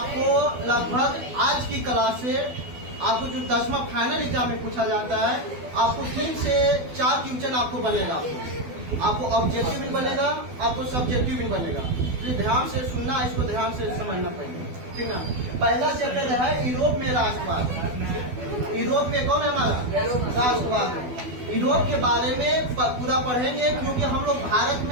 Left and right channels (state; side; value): late; left; 12 ms